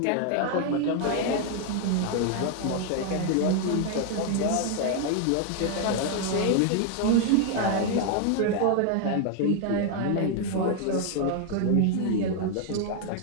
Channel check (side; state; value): both; different; correlation 0.00